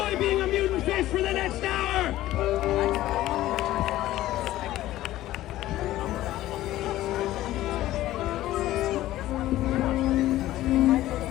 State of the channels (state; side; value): quieter; right; 15.0 dB